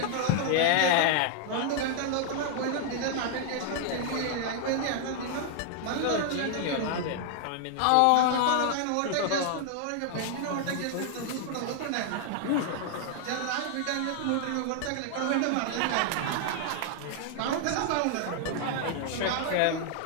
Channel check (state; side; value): different; both; correlation 0.00